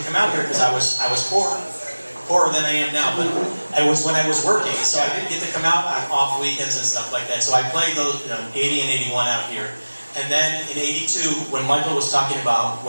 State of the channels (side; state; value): both; inverted; correlation -1.00